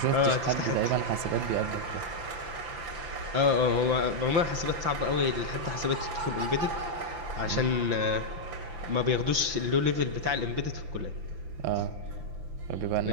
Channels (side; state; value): left; late; 5.9 ms